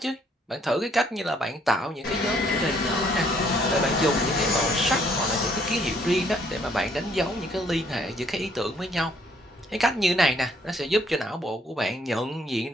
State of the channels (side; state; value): both; normal; correlation 0.66